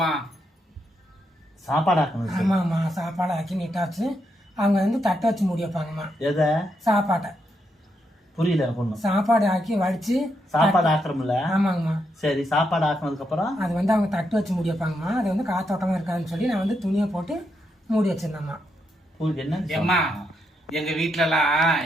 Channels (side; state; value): both; normal; correlation 0.81